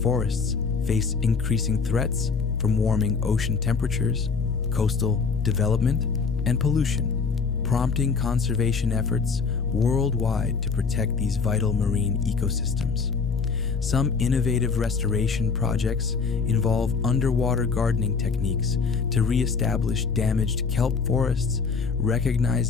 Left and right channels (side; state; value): right; quieter; 5.2 dB